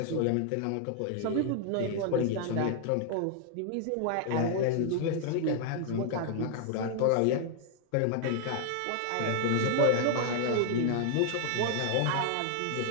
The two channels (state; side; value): different; both; correlation 0.00